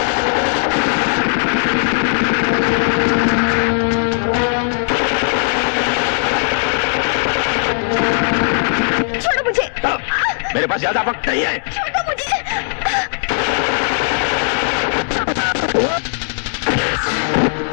छोड़ो मुझे। मेरे पास ज्यादा वक्त नहीं है। छोड़ो मुझे।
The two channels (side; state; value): right; silent; digital silence